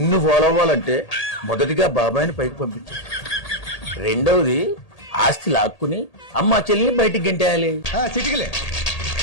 ఫాలో అవ్వాలంటే మొదటిగా బాబాయిని పైకి పంపించు. రెండవది ఆస్తి లాక్కుని అమ్మ చెల్లిని బయటికి గెంటేయాలి. చిటికలే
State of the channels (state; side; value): late; right; 1.8 ms